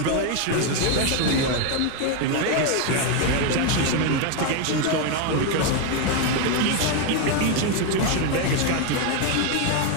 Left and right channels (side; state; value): both; different; correlation 0.01